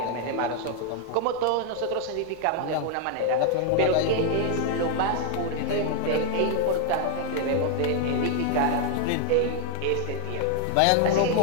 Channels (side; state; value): both; different; correlation 0.00